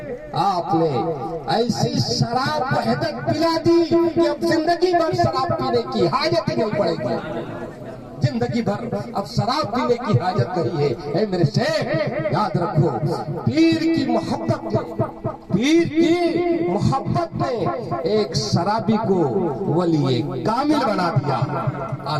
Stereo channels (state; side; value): identical; both; correlation 1.00